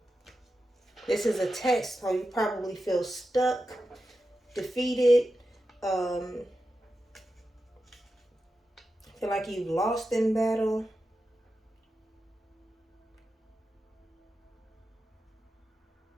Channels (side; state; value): both; normal; correlation 0.90